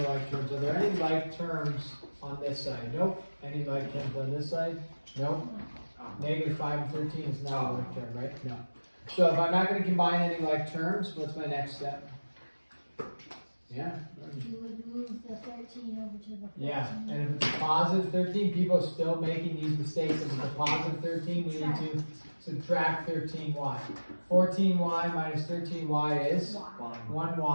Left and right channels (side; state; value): both; inverted; correlation -1.00